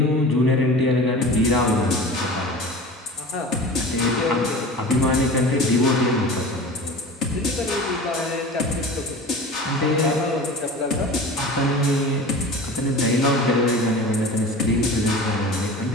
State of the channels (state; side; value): normal; both; correlation 0.36